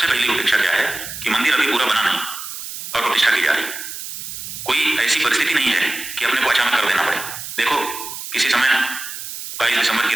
पहली उपेक्षा क्या है कि मंदिर अभी पूरा बना नहीं और प्रतिष्ठा की जा रही। कोई ऐसी परिस्थिति नहीं है कि अपने को अचानक कर देना पड़े। देखो, किसी समय 22 दिसंबर की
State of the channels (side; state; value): right; noise; hiss, 9 dB below the sound